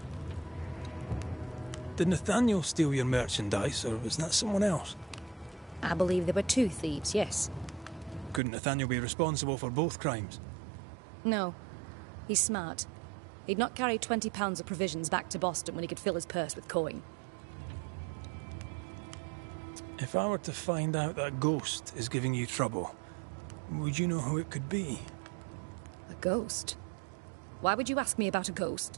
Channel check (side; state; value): left; drops out; at 8.4 s